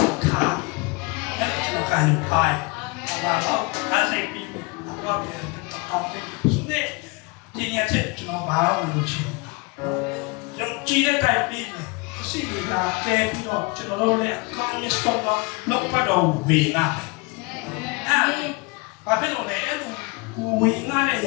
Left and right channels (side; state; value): right; quieter; 27.3 dB